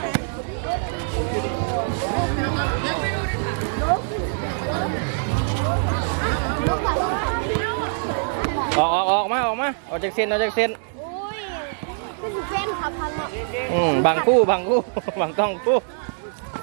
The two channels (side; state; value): left; silent; digital silence